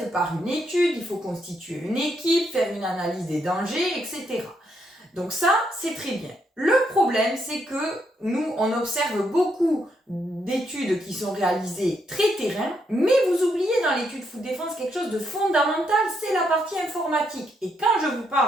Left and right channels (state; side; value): normal; both; correlation 0.77